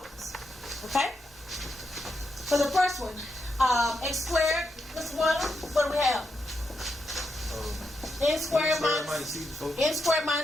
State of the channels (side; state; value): both; normal; correlation 0.84